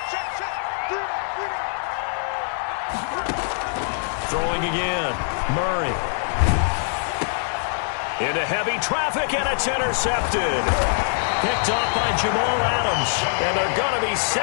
Throwing again. Murray. Into heavy traffic, and it's intercepted. Picked off by Jamal Adams. And they're going to be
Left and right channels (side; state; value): right; silent; digital silence